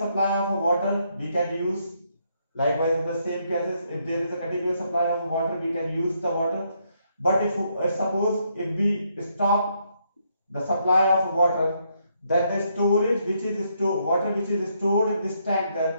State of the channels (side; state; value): both; inverted; correlation -0.74